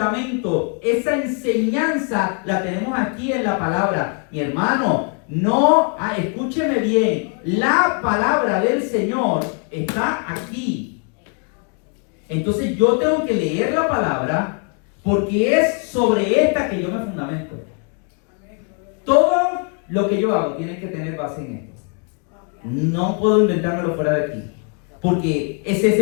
Esa enseñanza la tenemos aquí en la palabra. Mi hermano, escúcheme bien. La palabra del Señor está aquí. Entonces yo tengo que leer la palabra, porque es sobre esta que yo me fundamento. Todo lo que yo hago tiene que tener base en esto. No puedo inventármelo fuera de aquí, porque ese es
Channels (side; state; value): right; quieter; 38.2 dB